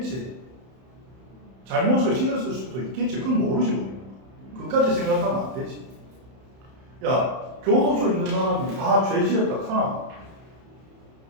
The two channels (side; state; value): left; late; 31 ms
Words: 잘못을 지었을 수도 있겠지. 그건 모르지 우리는. 그까지 생각하면 안 되지. 야, 교도소 있는 사람이 다 죄 지었다 카나?